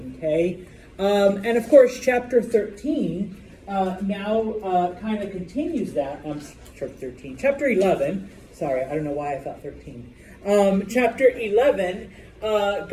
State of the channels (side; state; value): both; identical; correlation 1.00